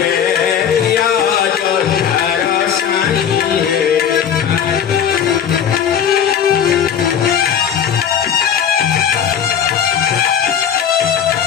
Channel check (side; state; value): right; quieter; 8.6 dB